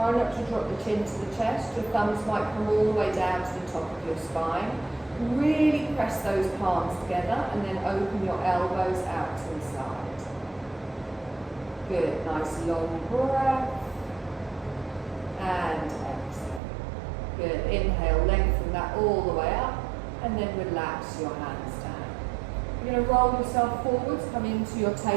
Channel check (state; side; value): drops out; left; at 16.6 s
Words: not to drop the chin to the chest. Your thumbs might come all the way down to the top of your spine. Really press those palms together and then open your elbows out to the side. Good. Nice long breath. And exhale. Good. Inhale, lengthen that all the way up and then relax your hands down. You're going to roll yourself forwards, come into your